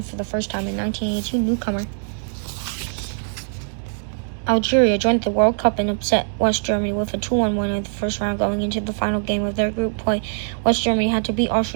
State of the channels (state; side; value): silent; left; 62 dB below the other